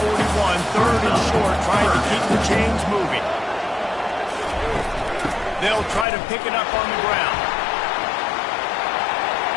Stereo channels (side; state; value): right; drops out; at 6.1 s